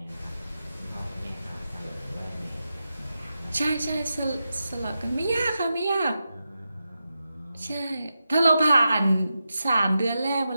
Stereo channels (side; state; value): both; inverted; correlation -0.89